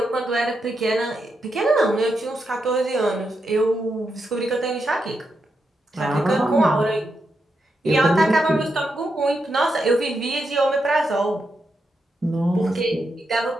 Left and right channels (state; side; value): normal; both; correlation 0.84